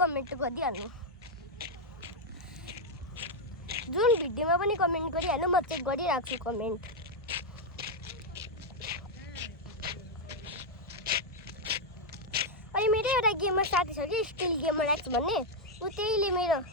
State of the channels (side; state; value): both; normal; correlation -0.01